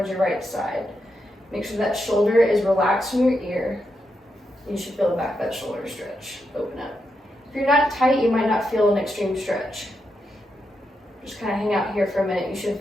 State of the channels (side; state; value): both; normal; correlation 0.84